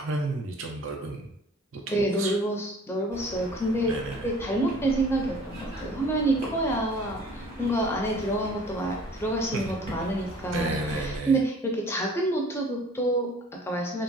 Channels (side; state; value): both; normal; correlation 0.50